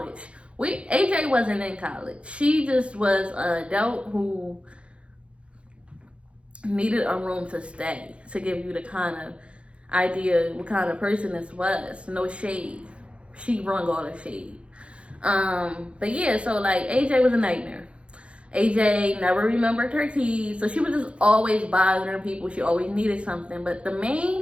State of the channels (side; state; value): left; late; 0.060 ms